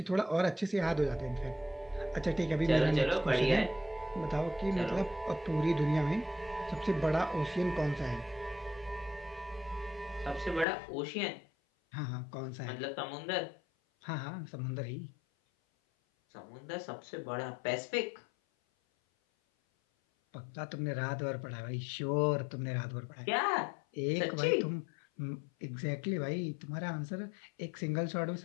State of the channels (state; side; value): drops out; right; at 10.7 s